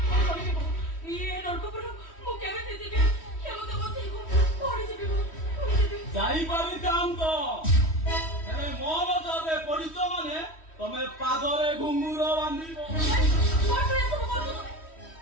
ଯାଇପାରିଥାନ୍ତ ହେଲେ ମୋର ଯଦି ପଡ଼ିଛ ମାନେ ତମେ ପାଦରେ ଘୁଙ୍ଗୁର ବାନ୍ଧିବ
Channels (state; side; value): late; right; 3.1 ms